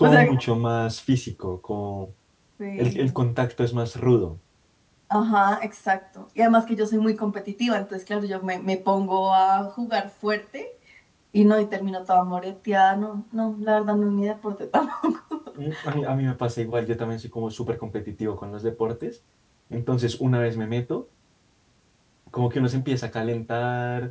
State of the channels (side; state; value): both; identical; correlation 1.00